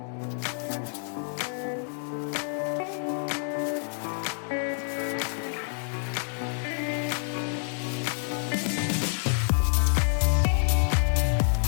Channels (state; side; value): silent; right; 58 dB below the other